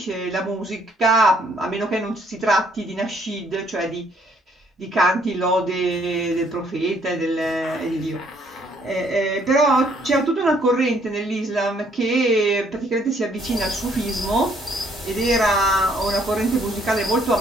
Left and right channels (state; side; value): normal; both; correlation 0.66